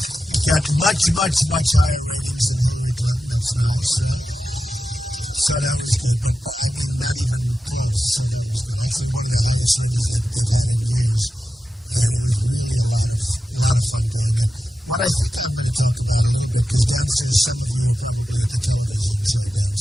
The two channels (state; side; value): normal; both; correlation 0.92